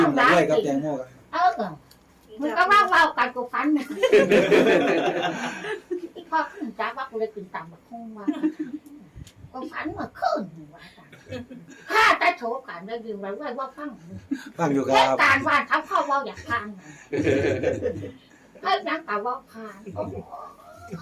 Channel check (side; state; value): both; identical; correlation 1.00